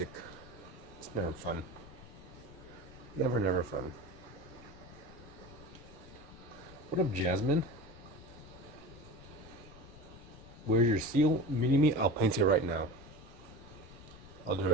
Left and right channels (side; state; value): left; noise; rumble, 19 dB below the sound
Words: it's never fun. Never fun. What up, Jasmine? Where's your seal? Mini-me? I'll paint it right now. I'll do it